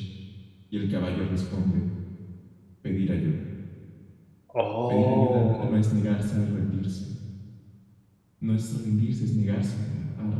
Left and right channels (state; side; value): identical; both; correlation 1.00